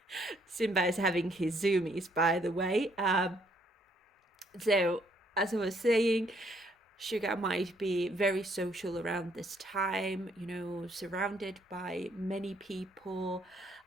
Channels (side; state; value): both; normal; correlation 0.68